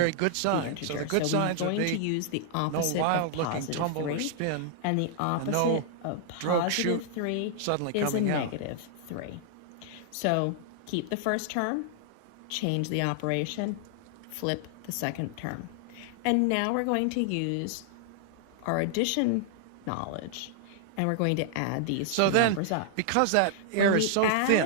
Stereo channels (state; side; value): different; both; correlation -0.01